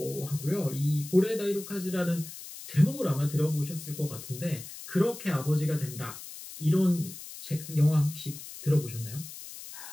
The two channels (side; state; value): left; noise; hiss, 13 dB below the sound